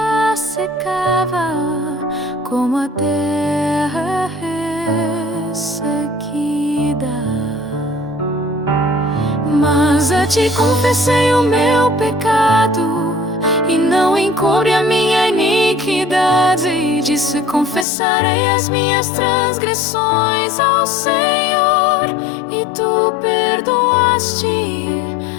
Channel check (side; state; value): right; drops out; at 17.9 s